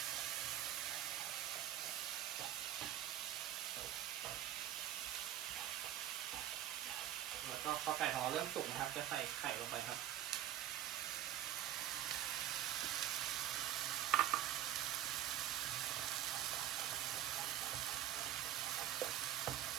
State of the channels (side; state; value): left; quieter; 11.8 dB